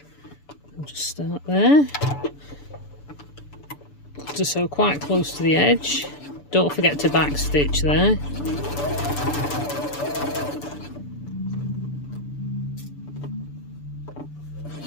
I'll just start there. To sew quite close to the edge. Don't forget to back stitch there.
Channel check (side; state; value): right; late; 6.9 ms